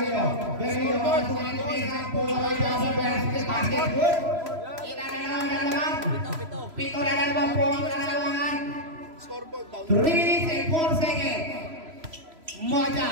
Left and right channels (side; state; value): left; late; 3.0 ms